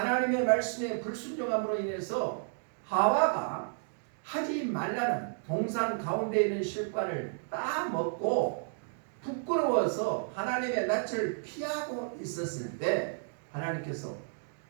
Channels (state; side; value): silent; left; digital silence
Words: 말씀에 불순종함으로 인해서 하와가 하지 말라는 동산 가운데 있는 실과를 따먹고 부끄러워서 하나님의 낯을 피하고 있었을 때 하나님께서